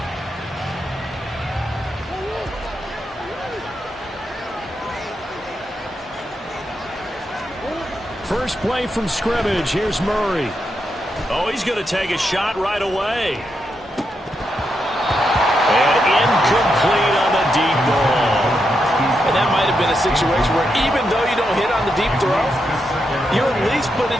First play from scrimmage. Here's Murray. Oh, he's going to take a shot right away. Incomplete on the deep ball. And that might have been a situation where even though you don't hit on the deep throw, you're at least put in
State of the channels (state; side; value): normal; both; correlation 0.83